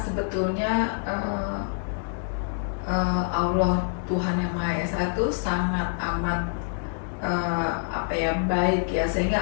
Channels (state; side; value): silent; right; digital silence